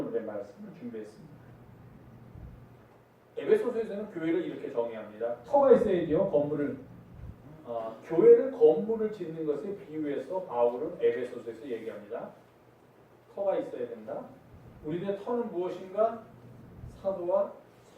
말씀을 준비했습니다. 에베소서에서는 교회를 이렇게 정의합니다. 터가 있어야죠. 건물을 교회를 건물을 짓는 것에 비유해서 바울은 에베소서에서 얘기합니다. 터가 있어야 된다. 우리들의 터는 무엇인가? 사도와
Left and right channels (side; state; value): both; identical; correlation 1.00